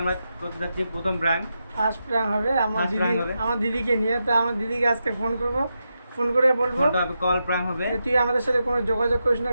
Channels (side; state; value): both; inverted; correlation -0.87